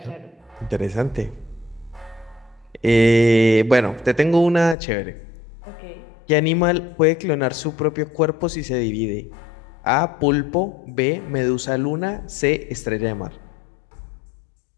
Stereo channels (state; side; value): drops out; right; at 4.8 s